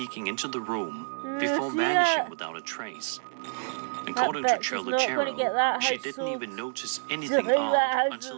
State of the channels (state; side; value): silent; left; digital silence